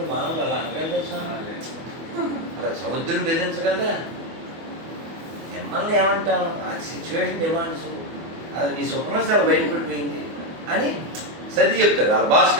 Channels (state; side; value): late; left; 24 ms